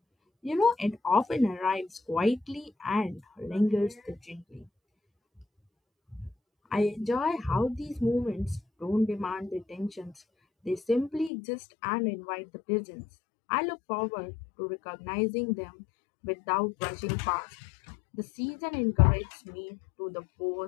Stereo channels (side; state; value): right; drops out; at 11.3 s